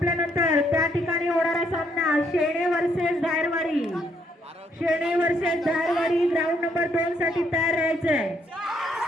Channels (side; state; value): both; normal; correlation 0.72